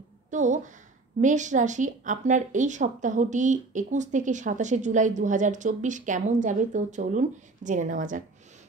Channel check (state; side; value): quieter; left; 3.4 dB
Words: তো মেষ রাশি, আপনার এই সপ্তাহটি 21 থেকে 27 জুলাই 2024 কেমন যাবে তো চলুন জেনে নেওয়া যাক।